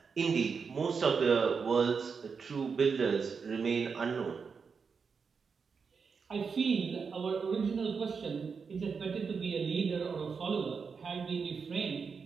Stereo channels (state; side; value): quieter; left; 5.6 dB